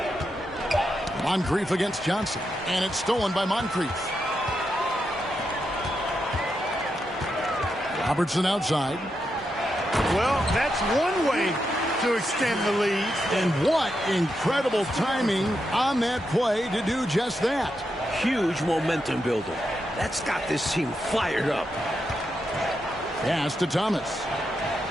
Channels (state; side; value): normal; both; correlation 0.85